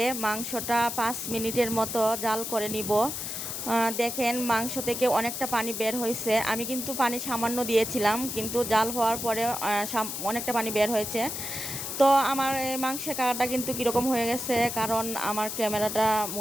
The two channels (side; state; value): left; noise; hiss, 5 dB below the sound